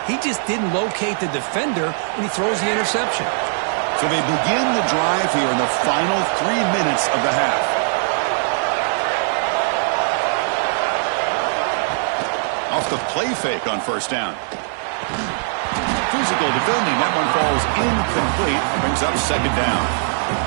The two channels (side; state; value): left; silent; 63 dB below the other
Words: he just didn't locate the defender when he throws the interception. So they begin the drive here in the final 3 minutes of the half. Off the play fake on first down. Physical defending. That one falls incomplete. Brings up second down.